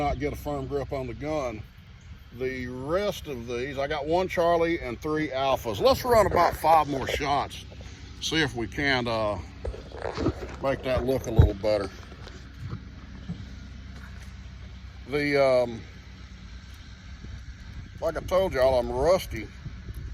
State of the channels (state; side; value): identical; both; correlation 1.00